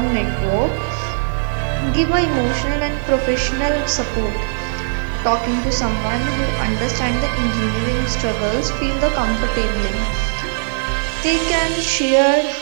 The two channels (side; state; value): left; silent; digital silence